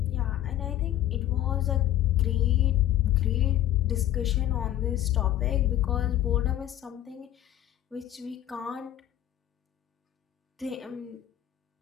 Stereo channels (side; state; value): right; quieter; 12.7 dB